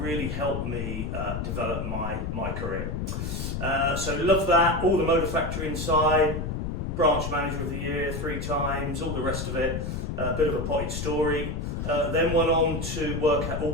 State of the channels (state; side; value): noise; left; rumble, 3 dB below the sound